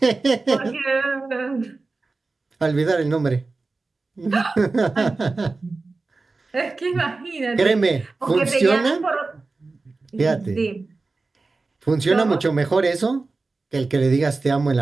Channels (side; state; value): left; quieter; 3.7 dB